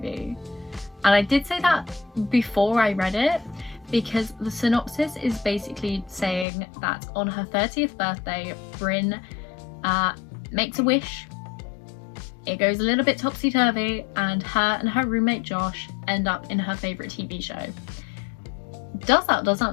And I did say that before I read it, because the synopsis is basically saying that on her 30th birthday, Bryn makes a wish. It goes a little bit topsy-turvy, and her roommate Josh end up in her favourite TV show. Does that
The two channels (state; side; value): drops out; right; at 6.5 s